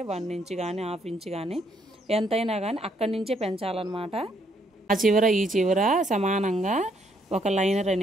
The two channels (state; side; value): normal; both; correlation 0.71